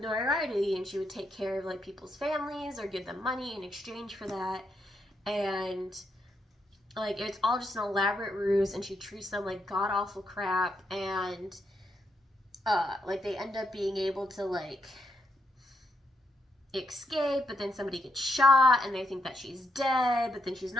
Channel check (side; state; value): both; normal; correlation 0.80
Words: notoriety, and she would take care of like people's families or give them money in exchange for that. And like it's all just an elaborate ruse, and she treats them like god-awful crap, and like they end up being able to like escape, but then somebody gets shot and they think that she's dead, but then she's